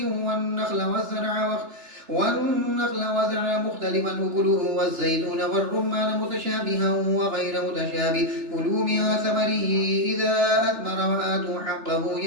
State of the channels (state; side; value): late; left; 3.3 ms